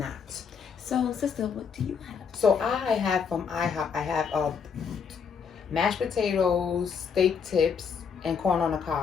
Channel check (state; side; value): quieter; right; 6.4 dB